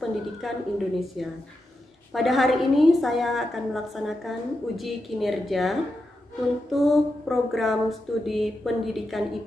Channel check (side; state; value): both; normal; correlation 0.88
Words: Indonesia. Pada hari ini saya akan melaksanakan uji kinerja untuk program studi pendidikan